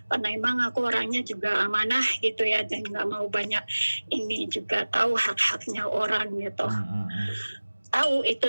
karena emang aku orangnya juga amanah gitu ya, dan nggak mau banyak ini, juga tahu hak-haknya orang gitu. Tahu itu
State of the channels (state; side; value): inverted; both; correlation -1.00